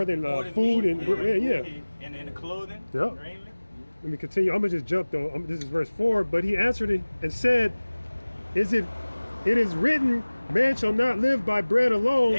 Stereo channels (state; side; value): inverted; both; correlation -1.00